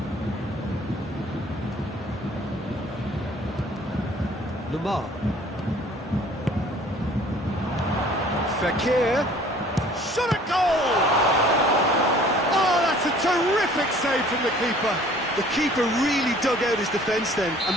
Lamar. Fekir. Shot at goal! Oh, that's a terrific save from the keeper. The keeper really dug out his defence then. A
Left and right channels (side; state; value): both; normal; correlation 0.53